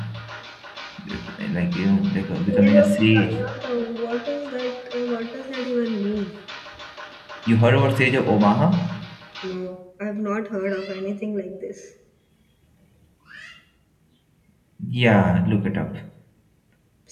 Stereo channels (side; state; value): both; identical; correlation 1.00